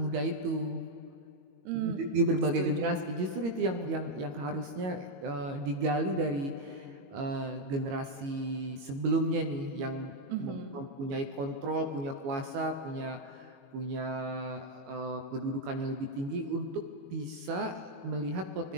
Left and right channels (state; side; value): late; left; 22 ms